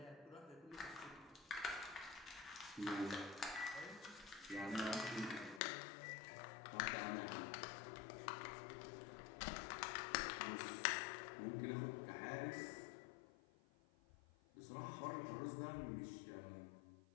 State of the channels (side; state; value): right; drops out; at 5.6 s